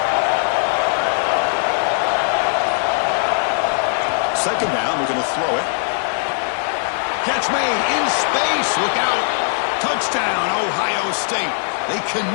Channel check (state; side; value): silent; right; digital silence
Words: 2nd down, we're going to throw it. Catch made in space. Look out. Touchdown, Ohio State. They